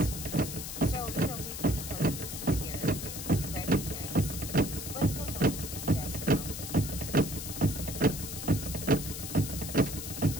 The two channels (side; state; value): left; noise; hiss, 7 dB below the sound